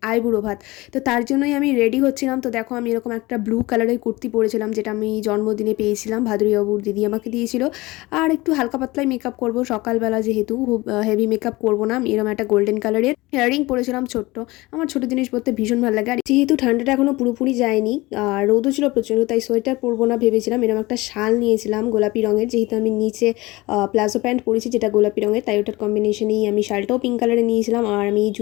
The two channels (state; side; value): quieter; right; 20.9 dB